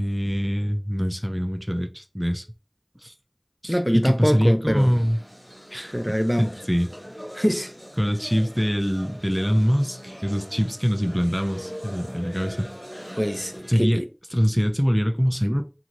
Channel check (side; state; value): both; identical; correlation 1.00